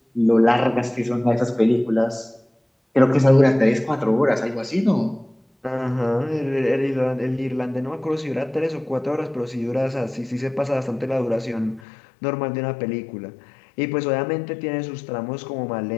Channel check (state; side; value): drops out; right; at 11.8 s